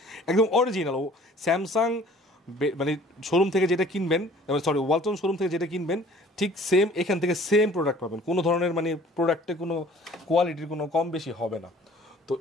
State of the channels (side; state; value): both; normal; correlation 0.52